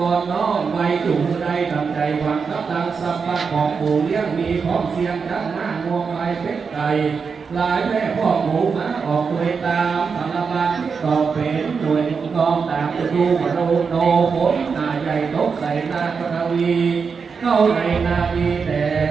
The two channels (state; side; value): quieter; left; 5.5 dB